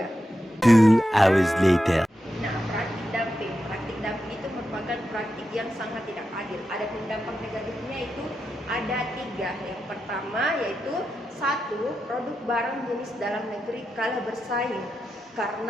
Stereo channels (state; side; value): normal; both; correlation 0.88